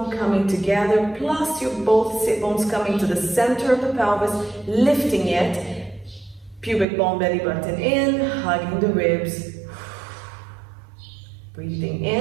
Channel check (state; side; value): drops out; left; at 6.9 s